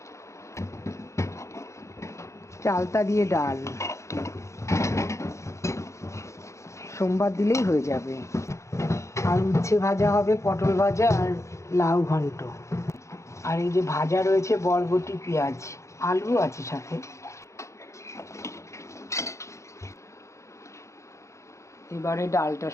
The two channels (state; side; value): late; right; 0.14 ms